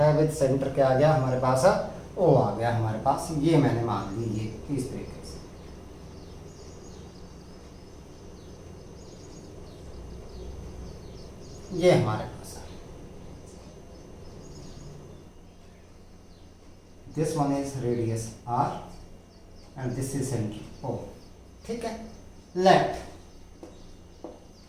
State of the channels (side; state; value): both; identical; correlation 1.00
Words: विद सेंटर क्या आ गया हमारे पास, O आ गया हमारे पास, ये मैंने मान ली, ये इस तरीके से। ये हमारे पास है, this one is radius r and this is centre O, ठीक है। Let